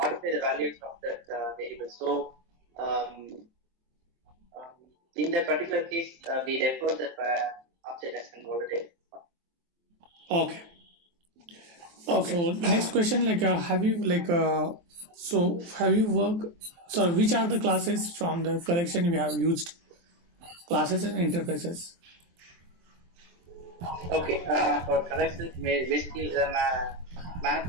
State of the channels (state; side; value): late; left; 23 ms